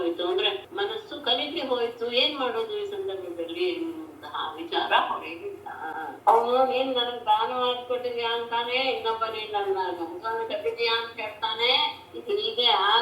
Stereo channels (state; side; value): identical; both; correlation 1.00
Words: ಅಂದ್ರೆ ಮನಸ್ಸು ಕಲಿಕೆ ಹೋಯ್ತು, ಏನ್ ಮಾಡೋದು ಈ ಸಂದರ್ಭದಲ್ಲಿ ಎನ್ನುವಂತಹ ವಿಚಾರ ಹೊರಗಿಲ್ಲ. ಅವನು ನೀನ್ ನನಗ್ ದಾನ ಮಾಡಿಕೊಟ್ಟಿದ್ಯಾ ಅಂತಾನೆ, ಇನ್ನೊಬ್ಬ ನೀನ್ ನನ್ನ ಹಸುವನ್ನು ಕಟ್ಟಿದ್ಯಾ ಅಂತ ಹೇಳ್ತಾನೆ. ಹೀಗೆ